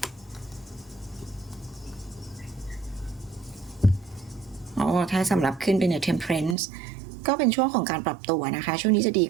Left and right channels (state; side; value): drops out; left; at 6.6 s